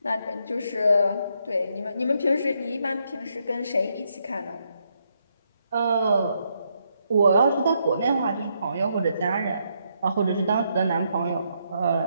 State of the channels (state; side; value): inverted; both; correlation -0.77